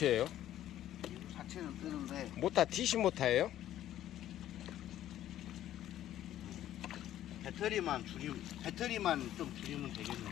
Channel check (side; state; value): right; quieter; 12.5 dB